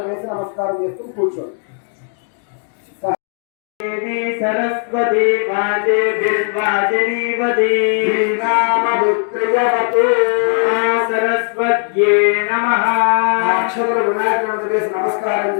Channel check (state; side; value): silent; right; 56 dB below the other